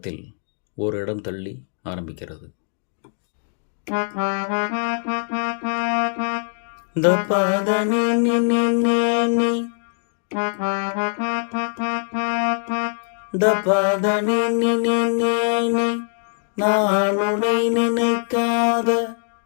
ஒரு இடம் தள்ளி ஆரம்பிக்கிறது. த பத நி நி நி நி நி த பத நி நி நி நி நி நான் உன்னை நினைக்காத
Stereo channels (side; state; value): right; silent; digital silence